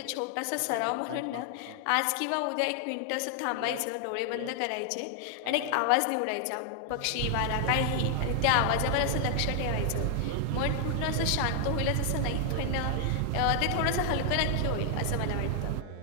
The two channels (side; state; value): both; different; correlation 0.00